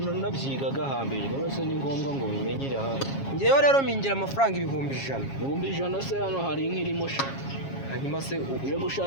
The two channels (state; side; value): late; right; 7.3 ms